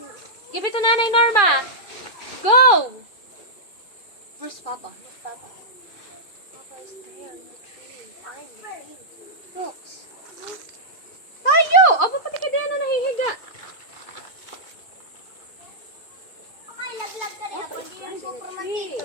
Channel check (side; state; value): right; late; 2.4 ms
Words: Give it to nanay, Norma. Go! Where's Papa? Look, Papa. Papa is there in the tree. Find the tree. Looks. Tayo! Aba, pati ka diyan na nahihiga. Okay, laglag ka rin. Papa Ako is hindi finding yung a super tree.